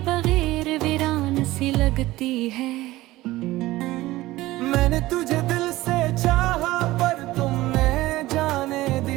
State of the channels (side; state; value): left; quieter; 17.7 dB